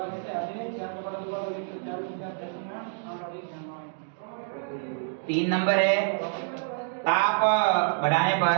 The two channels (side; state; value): left; silent; digital silence